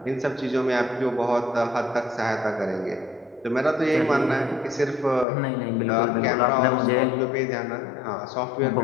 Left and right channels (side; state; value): right; drops out; at 5.2 s